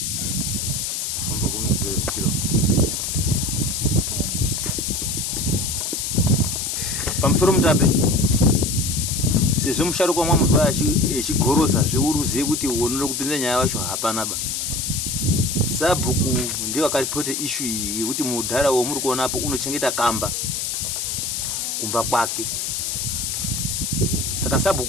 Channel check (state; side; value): noise; left; hiss, 2 dB below the sound